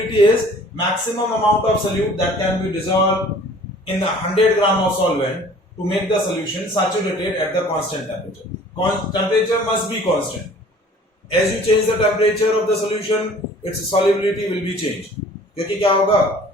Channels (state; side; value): normal; both; correlation 0.50